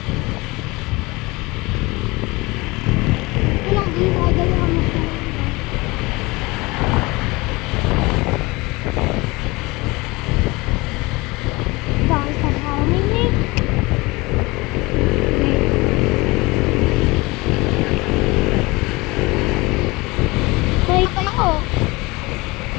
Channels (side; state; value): right; quieter; 23.3 dB